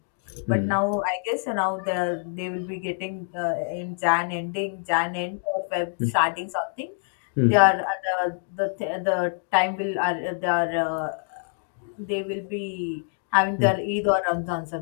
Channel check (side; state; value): right; silent; 61 dB below the other